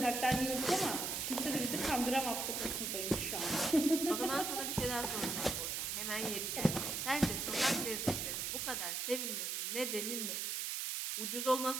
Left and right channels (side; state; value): right; noise; hiss, 1 dB below the sound